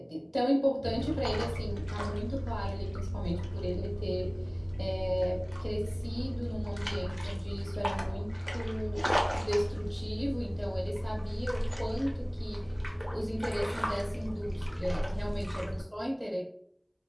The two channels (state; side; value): identical; both; correlation 1.00